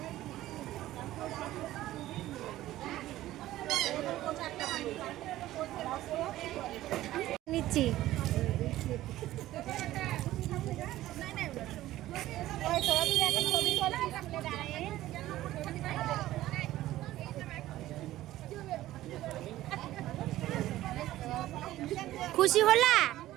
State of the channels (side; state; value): left; quieter; 15.1 dB